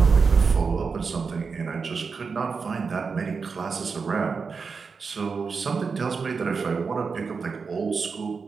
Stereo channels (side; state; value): left; quieter; 5.1 dB